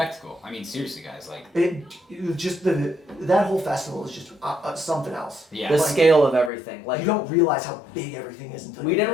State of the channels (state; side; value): drops out; right; at 6.5 s